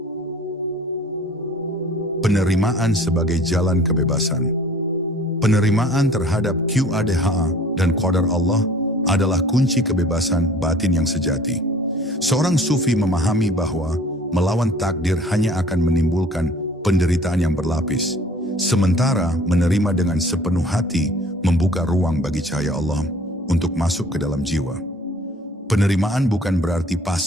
Penerimaan sebagai jalan kebebasan. Penerimaan terhadap Qadha dan Qadar Allah adalah kunci kebebasan batin yang sejati. Seorang sufi memahami bahwa melawan takdir hanya akan menimbulkan penderitaan yang berlapis, sementara menerima dengan sepenuh hati membuka ruang bagi cahaya Allah untuk masuk ke dalam jiwa. Penerimaan bukan berarti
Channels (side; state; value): both; normal; correlation 0.50